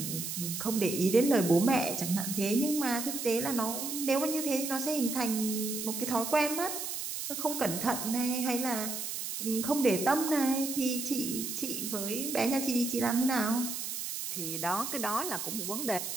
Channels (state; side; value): noise; right; hiss, 4 dB below the sound